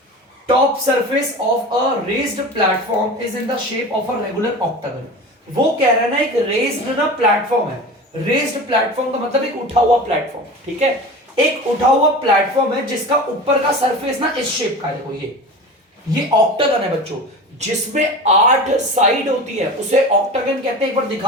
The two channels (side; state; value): both; normal; correlation 0.33